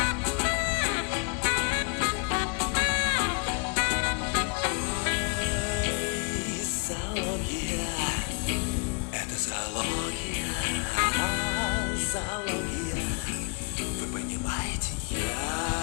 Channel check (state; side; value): quieter; right; 34.4 dB